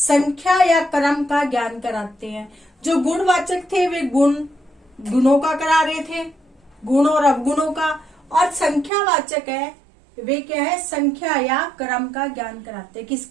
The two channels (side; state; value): left; drops out; at 8.9 s